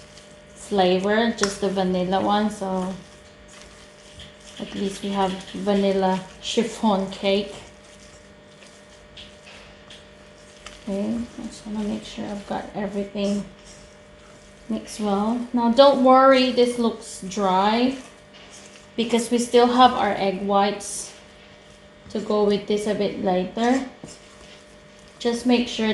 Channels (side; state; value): both; identical; correlation 1.00